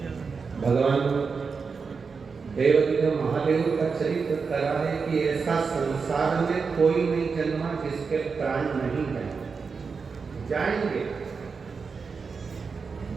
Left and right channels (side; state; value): left; quieter; 5.2 dB